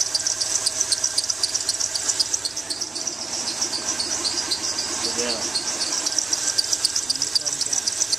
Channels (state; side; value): quieter; left; 3.5 dB